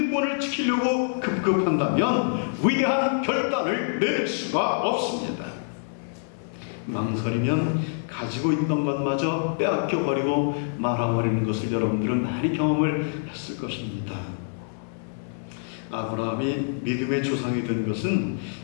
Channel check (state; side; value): silent; right; digital silence